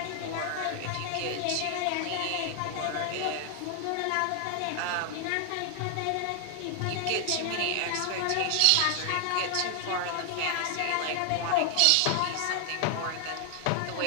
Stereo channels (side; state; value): both; different; correlation 0.00